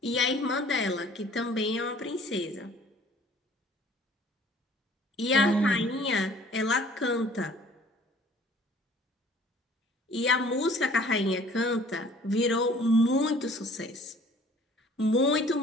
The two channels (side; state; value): both; normal; correlation 0.53